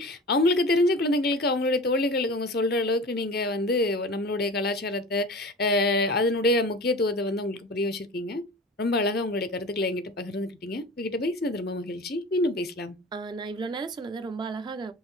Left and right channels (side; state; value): both; normal; correlation 0.37